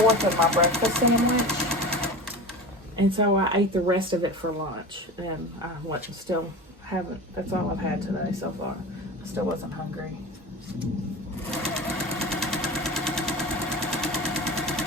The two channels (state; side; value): normal; both; correlation 0.31